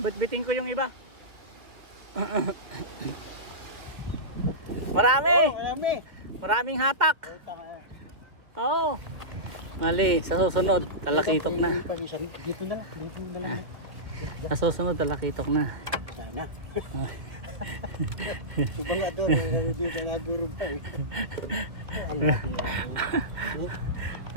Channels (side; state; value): left; late; 2.3 ms